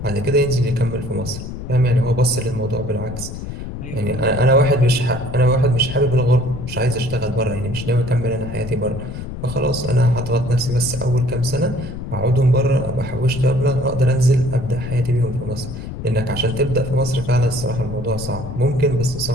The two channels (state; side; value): noise; left; rumble, 9 dB below the sound